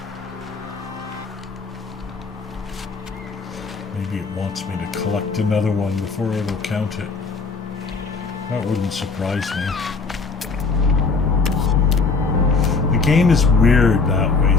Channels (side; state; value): right; quieter; 4.4 dB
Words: Maybe it wants me to collect another one before it'll count it. That wouldn't surprise me. The game is weird that way